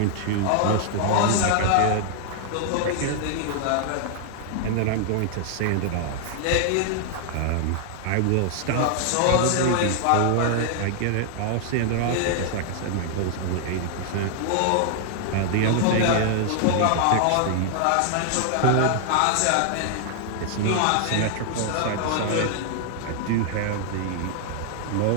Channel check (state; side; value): different; both; correlation 0.00